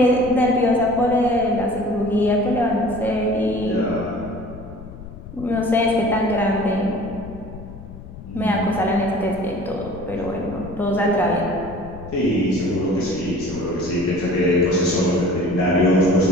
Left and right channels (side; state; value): left; noise; rumble, 15 dB below the sound